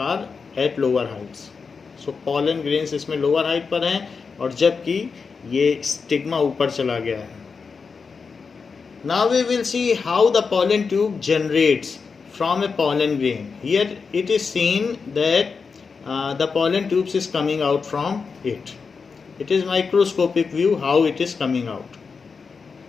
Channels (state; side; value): quieter; right; 5.2 dB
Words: at lower heights. So pollen grains इसमें lower height पर हैं और जबकि ये स्टिग्मा ऊपर चला गया है. Now we will see how the pollen tube generates from a pollen grain. Here it is seen that the pollen tubes is coming out from it. It is microscopic view how it is coming out.